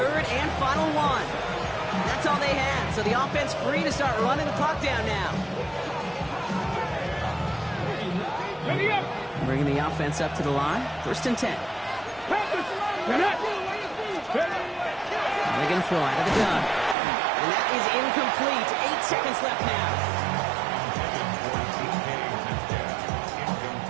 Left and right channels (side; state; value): left; drops out; at 16.9 s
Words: and final one. That's all they had. So the offense free to start running the clock down now. Ready up. Bringing the offense up to the line. 1st and 10. They're going to throw out of the gun. And that is incomplete. 8 seconds left now.